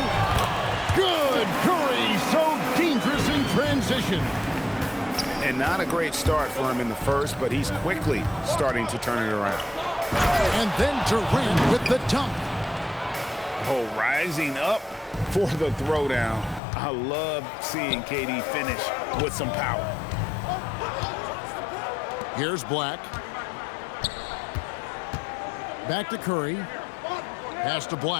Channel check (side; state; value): right; drops out; at 16.6 s